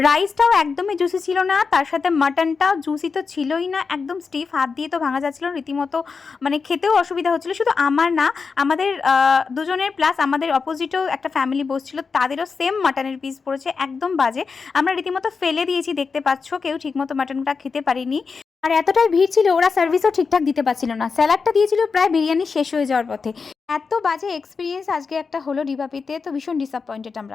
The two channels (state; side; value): quieter; right; 5.1 dB